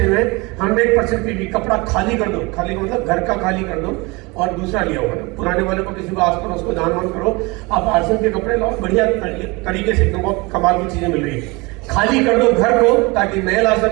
हुए हैं, 100% पीवी। कपड़ा खाली कर दो, खाली मतलब घर का खाली कर दो और दूसरा लिया होगा ना, पुराने वाले को किसी को आस पड़ोस को दान वान करो। आप आरसीएम के कपड़े लाओ, बढ़िया तरीके से एकदम बहुत कमाल की चीजें मिल रही है। खाली कर दो घर को ताकि नया ला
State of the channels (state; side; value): quieter; left; 25.5 dB